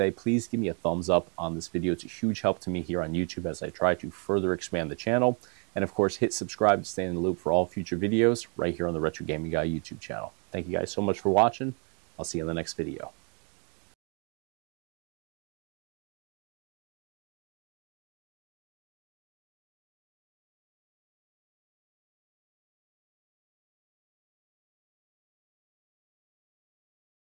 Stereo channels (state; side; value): quieter; left; 37.6 dB